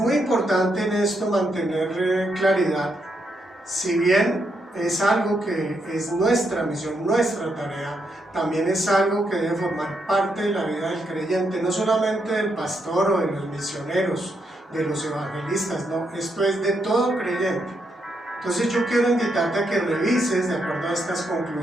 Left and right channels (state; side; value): normal; both; correlation 0.79